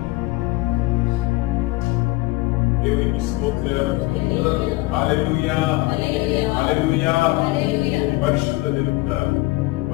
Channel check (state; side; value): quieter; right; 20.5 dB